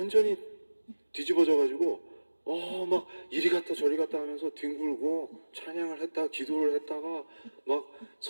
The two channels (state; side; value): inverted; both; correlation -1.00